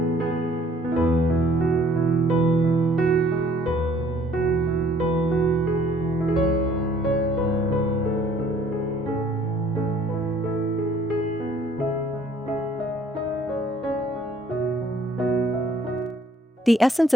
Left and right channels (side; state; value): both; normal; correlation 0.59